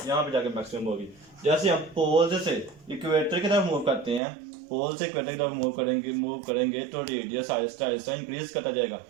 जाके मैक्सिमम होगी। जैसे हम पोल से इक्वेटर की तरफ मूव करते हैं, पोल से इक्वेटर की तरफ मूव करेंगे तो रेडियस आहिस्ता आहिस्ता इंक्रीज करता जाएगा।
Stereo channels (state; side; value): drops out; left; at 4.2 s